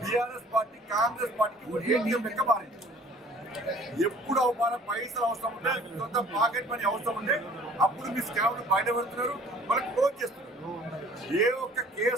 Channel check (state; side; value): normal; both; correlation 0.52